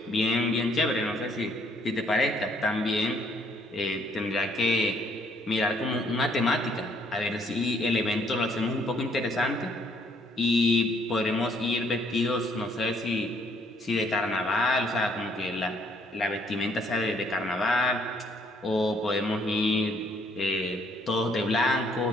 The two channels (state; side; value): normal; both; correlation 0.66